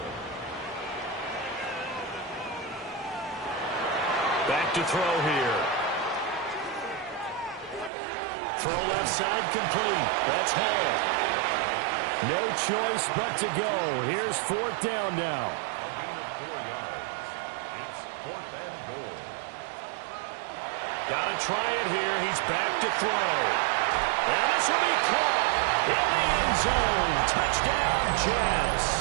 Back to throw here. Throw left side complete. That's Hall. No choice but to go. Here's 4th down now. A gain of 4 yards. It's 4th and goal. Got to try it here. He's back to throw. And this will be caught in the end zone. Touchdown,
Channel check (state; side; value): drops out; left; at 7.9 s